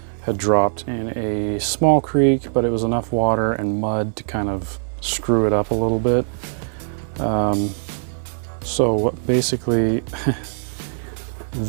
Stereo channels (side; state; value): left; silent; 65 dB below the other